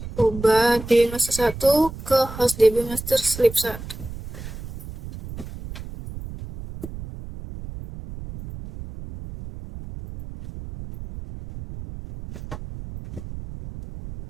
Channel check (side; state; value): right; noise; rumble, 12 dB below the sound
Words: ubah dbmaster 1 ke host dbmaster sleep 1.